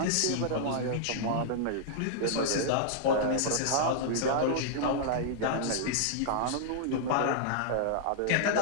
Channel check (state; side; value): different; both; correlation -0.01